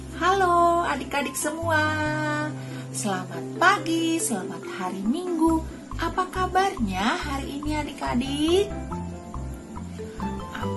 Halo adik-adik semua, selamat pagi, selamat hari Minggu. Apa kabarnya hari ini adik-adik?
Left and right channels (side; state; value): both; identical; correlation 1.00